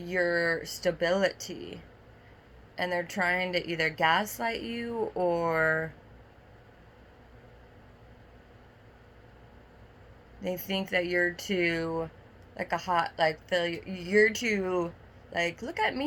stability and they're trying to either gaslight you or They think that you're too, like a hot, like, failure. You're too, like, look at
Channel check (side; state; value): both; identical; correlation 1.00